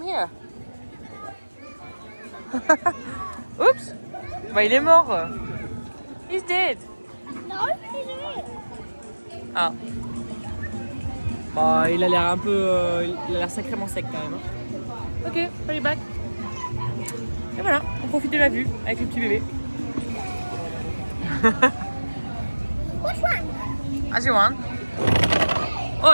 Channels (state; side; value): inverted; both; correlation -1.00